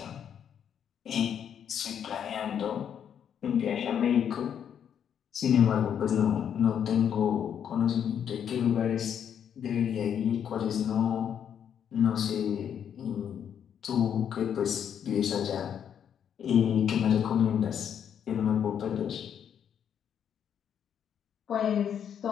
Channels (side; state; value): right; quieter; 8.6 dB